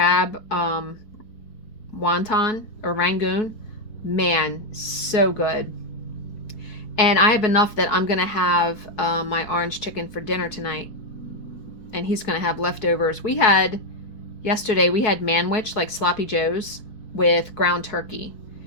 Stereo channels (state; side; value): late; right; 4.6 ms